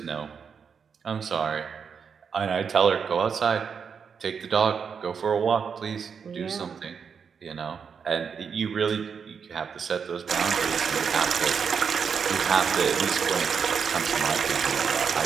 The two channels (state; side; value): quieter; left; 6.4 dB